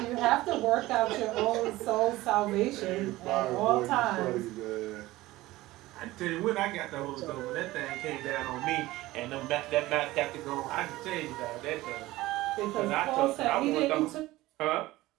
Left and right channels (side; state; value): left; quieter; 17.9 dB